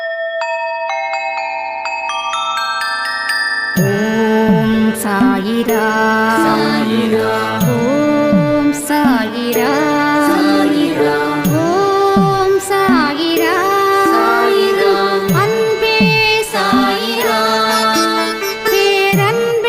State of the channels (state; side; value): identical; both; correlation 1.00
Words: ஓம் சாயிரா சாயிரா, ஓம் சாயிரா சாயிரா, ஓம் சாயிரா சாயிரா, அன்பே சாயிரா,